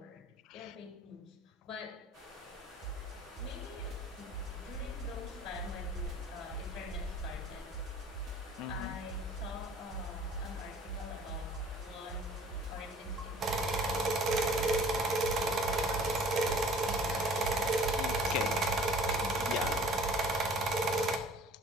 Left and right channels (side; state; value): both; normal; correlation 0.49